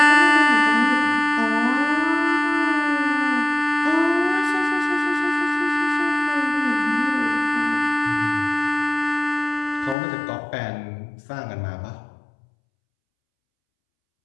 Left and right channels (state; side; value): drops out; right; at 10.0 s